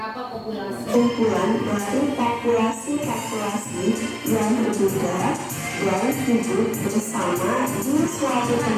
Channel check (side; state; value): both; identical; correlation 1.00